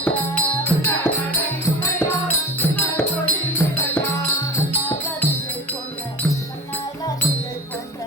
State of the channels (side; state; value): both; normal; correlation 0.32